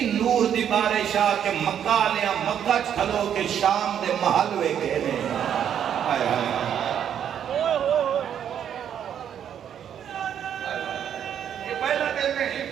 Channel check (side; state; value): left; quieter; 9.1 dB